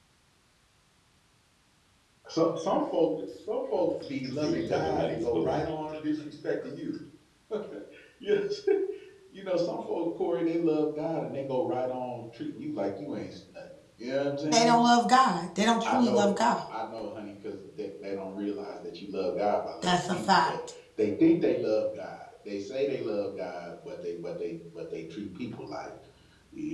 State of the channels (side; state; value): both; identical; correlation 1.00